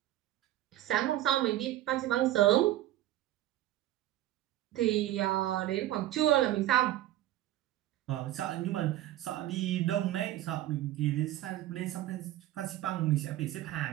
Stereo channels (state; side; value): quieter; left; 14.3 dB